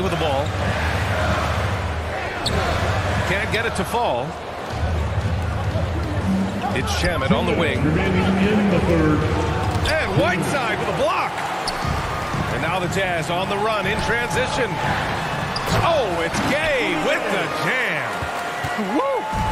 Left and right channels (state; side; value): identical; both; correlation 1.00